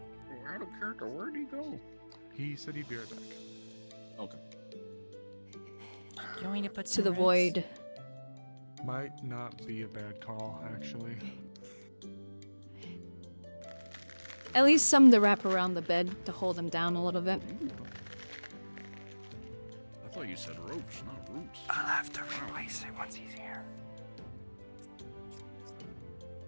of character, where'd he go? He said he'd be right back. Okay. Do you want me to put To some the roots? void. Might not be a bad call, actually. At least some to wrap around the bed to hold him down a little bit. I thought you said ropes, not roots. I'll have to replace it once he's here.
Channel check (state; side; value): inverted; both; correlation -1.00